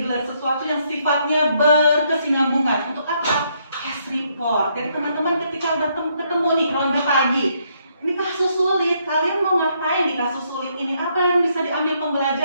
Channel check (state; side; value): inverted; both; correlation -0.73